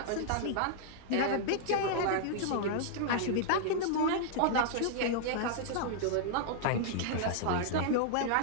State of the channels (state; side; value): different; both; correlation -0.01